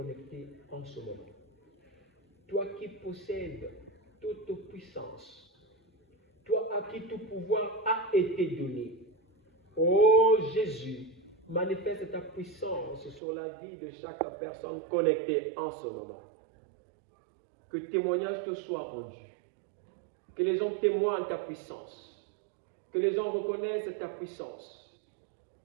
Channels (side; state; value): left; drops out; at 13.2 s